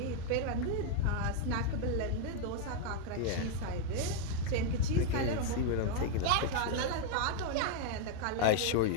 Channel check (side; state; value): both; different; correlation 0.00